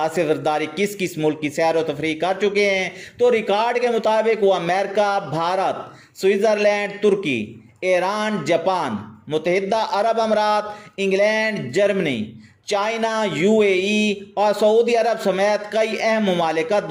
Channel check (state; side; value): identical; both; correlation 1.00